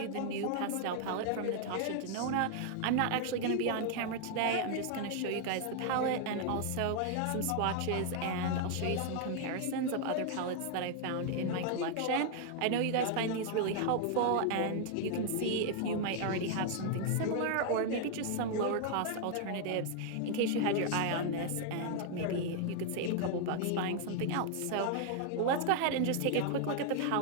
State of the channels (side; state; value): both; different; correlation 0.00